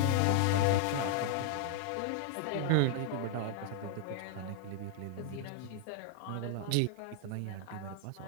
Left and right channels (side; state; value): both; different; correlation -0.01